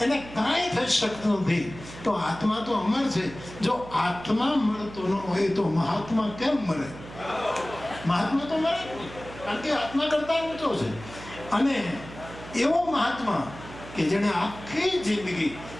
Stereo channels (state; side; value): noise; right; hum, 15 dB below the sound